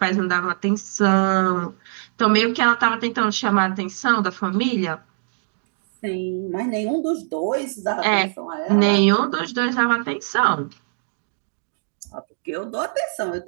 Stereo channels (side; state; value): left; silent; digital silence